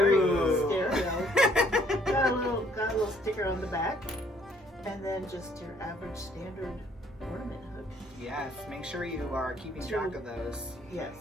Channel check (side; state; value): both; normal; correlation 0.63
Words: Got a little sticker on the back, and then just your average standard ornament hook. Yes, make sure you are keeping track of those. Yes,